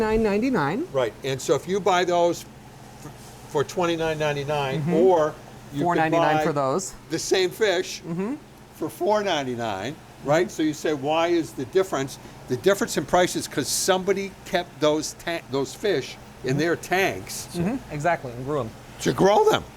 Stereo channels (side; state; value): both; identical; correlation 1.00